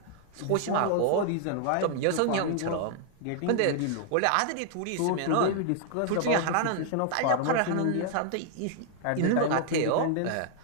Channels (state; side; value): different; both; correlation -0.01